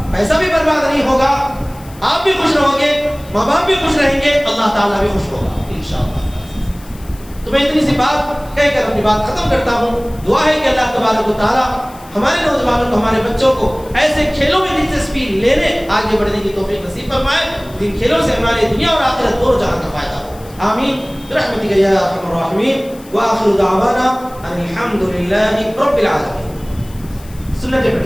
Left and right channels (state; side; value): noise; left; hiss, 23 dB below the sound